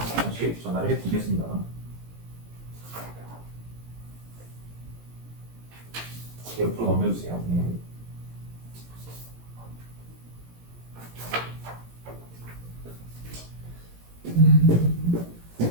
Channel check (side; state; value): left; late; 17 ms